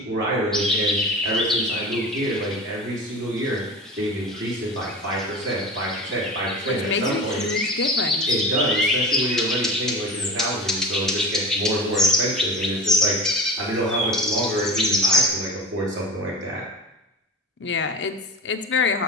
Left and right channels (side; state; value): both; normal; correlation 0.31